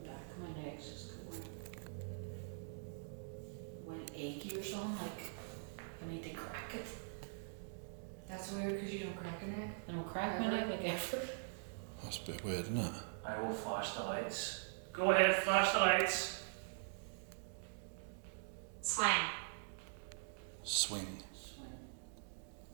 the back of my neck just going like achy or something. Like I need to crack it. That's weird because you don't crack your neck. I don't crack my neck like ever. That's a bit weird, isn't it? I will flash the lights. Go ahead, flash the lights. Swing. Swing.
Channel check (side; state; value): left; silent; digital silence